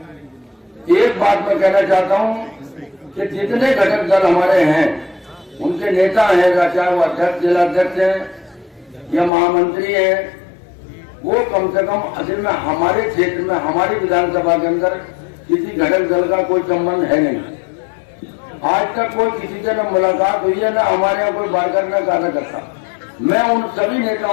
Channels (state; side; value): drops out; right; at 9.3 s